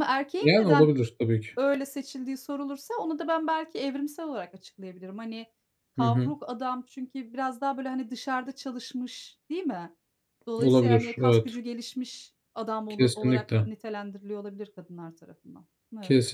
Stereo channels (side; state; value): both; identical; correlation 1.00